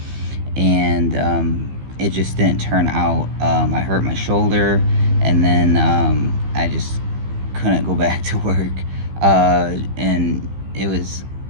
and it just didn't turn out. I hurt my shoulder, and then I just couldn't go back to work, and it was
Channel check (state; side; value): late; left; 15 ms